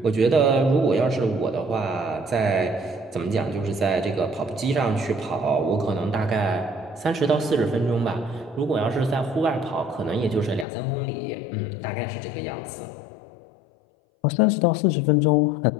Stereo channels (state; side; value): drops out; right; at 10.7 s